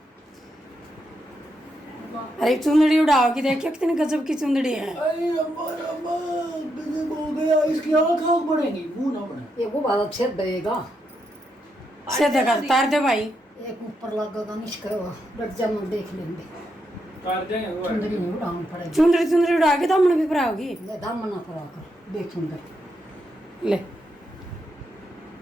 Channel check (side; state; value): both; normal; correlation 0.82